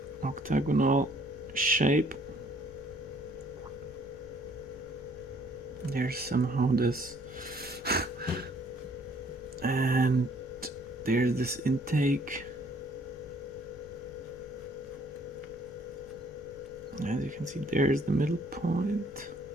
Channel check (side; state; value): left; noise; rumble, 21 dB below the sound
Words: octagonal shape. There's somehow this and there's this intake. As you can see, there's the middle point.